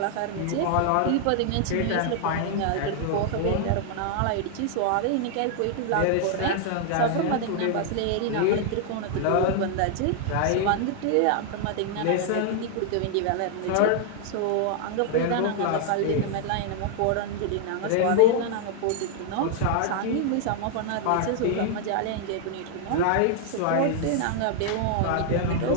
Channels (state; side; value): different; both; correlation 0.00